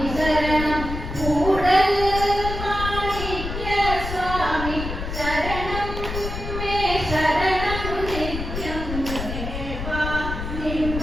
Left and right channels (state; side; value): noise; left; rumble, 6 dB below the sound